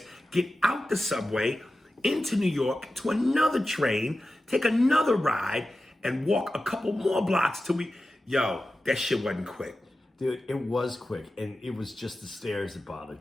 get out the subway, into New York, to another train, take another ride, and walk a couple more blocks till we... Yo, that shit wasn't quick. Dude, it was quick, and it was just the stairs that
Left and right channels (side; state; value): both; normal; correlation 0.93